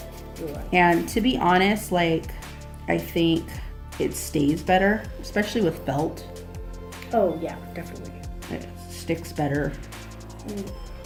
And to be honest, like, I think it stays better, especially with felt. Oh yeah, definitely. It sticks better.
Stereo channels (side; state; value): both; identical; correlation 1.00